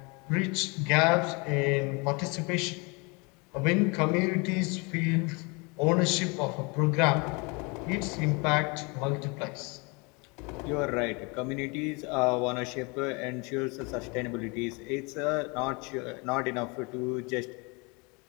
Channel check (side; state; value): right; quieter; 29.6 dB